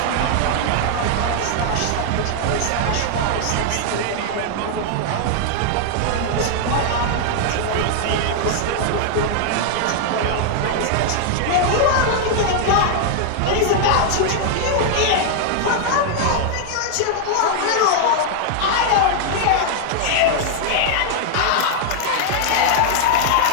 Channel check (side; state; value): both; different; correlation 0.00